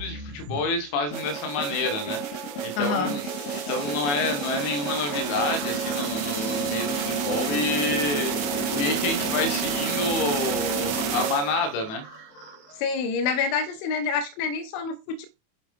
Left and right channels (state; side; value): late; right; 27 ms